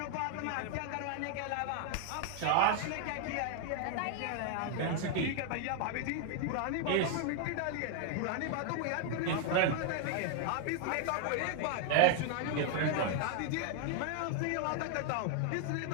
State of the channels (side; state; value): both; different; correlation 0.00